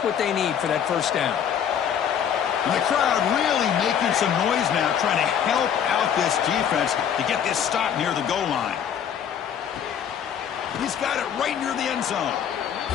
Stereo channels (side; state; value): right; quieter; 8.6 dB